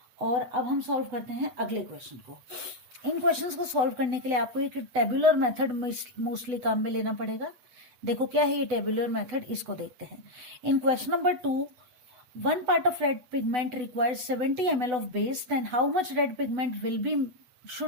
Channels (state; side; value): late; left; 8.0 ms